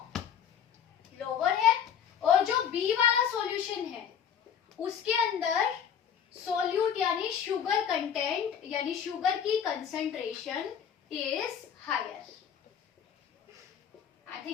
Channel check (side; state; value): right; quieter; 8.2 dB